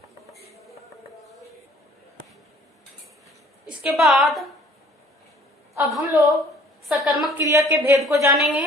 इसके बाद अब हम लोग सकर्मक क्रिया के भेद को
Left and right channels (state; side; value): normal; both; correlation 0.54